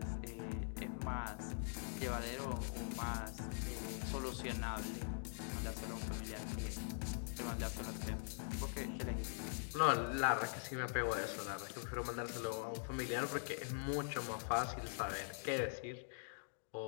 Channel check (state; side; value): silent; right; digital silence